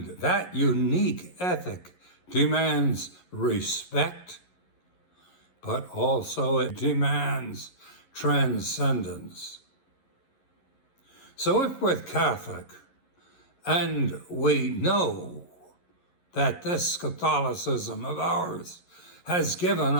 that unique ethic demands respect, but also it demands transcendence. So if we're Catholic and we know that this Catholicism of ours has given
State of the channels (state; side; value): late; right; 11 ms